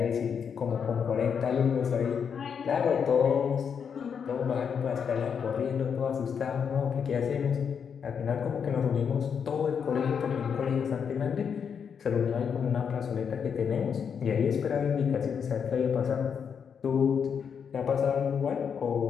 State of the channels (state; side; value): quieter; right; 7.0 dB